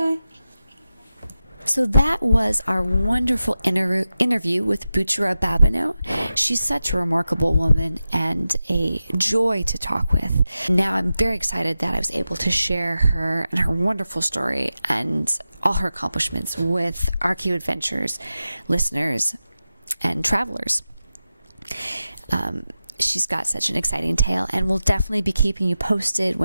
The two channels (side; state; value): both; inverted; correlation -0.93